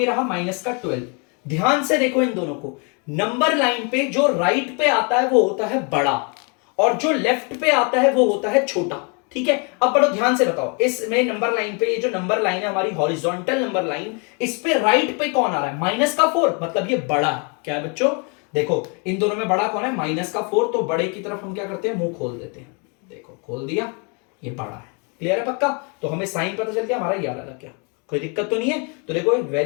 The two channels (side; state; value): right; quieter; 35.2 dB